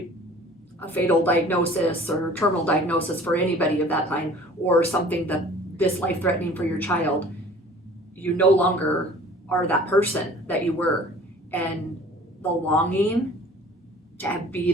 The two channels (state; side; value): normal; both; correlation 0.47